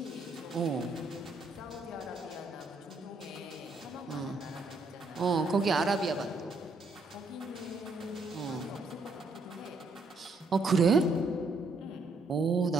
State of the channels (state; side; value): quieter; left; 3.1 dB